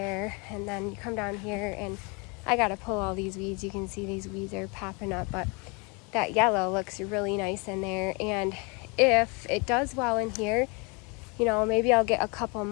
And then you come down here and I gotta pull all these weeds. You can see these weeds are popping up, but that yellow looks really nice in there. And if it does well in here, you know, maybe I'll get a couple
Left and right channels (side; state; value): right; quieter; 31.1 dB